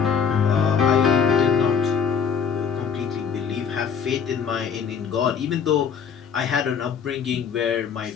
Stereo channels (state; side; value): quieter; right; 6.8 dB